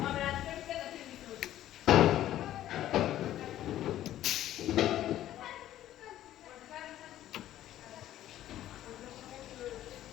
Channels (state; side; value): quieter; right; 12.9 dB